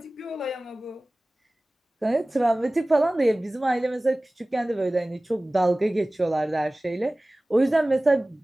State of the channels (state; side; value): normal; both; correlation 0.98